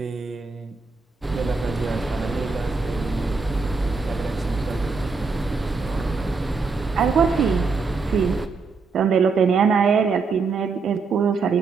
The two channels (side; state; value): left; quieter; 4.6 dB